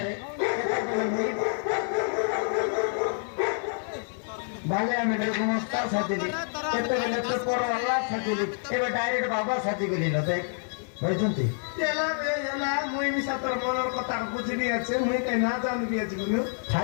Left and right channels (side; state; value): right; silent; 60 dB below the other